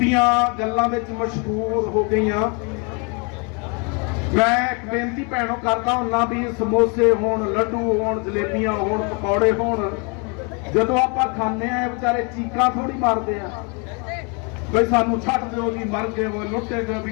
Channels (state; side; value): quieter; right; 33.8 dB